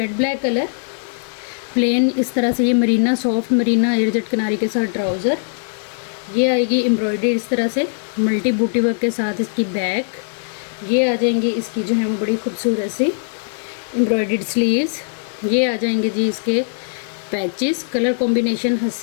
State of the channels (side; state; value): right; silent; digital silence